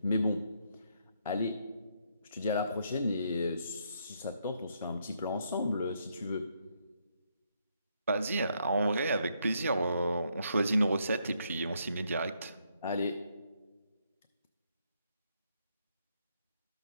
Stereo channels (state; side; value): inverted; both; correlation -0.74